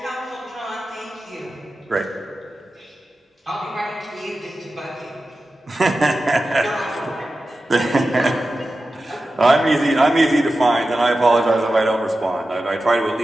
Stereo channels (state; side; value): normal; both; correlation 0.93